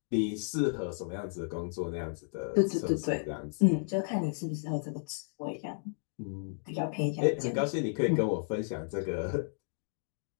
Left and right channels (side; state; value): right; silent; digital silence